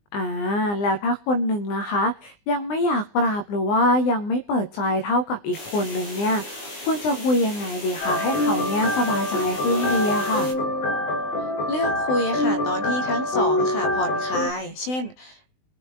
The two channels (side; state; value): right; late; 20 ms